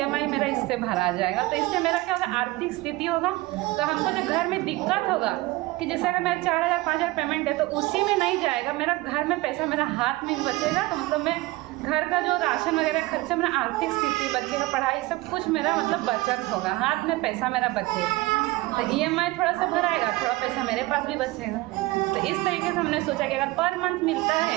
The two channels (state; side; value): quieter; left; 20.3 dB